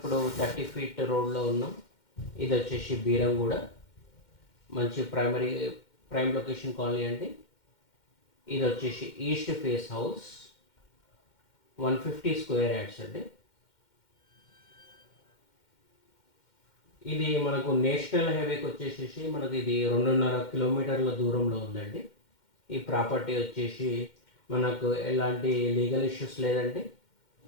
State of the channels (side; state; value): right; late; 2.1 ms